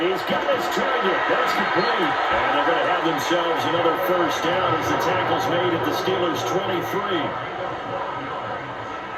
got his target. That's complete. And they're going to have themselves another first down as the tackle's made at the Steelers' 23.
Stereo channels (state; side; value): identical; both; correlation 1.00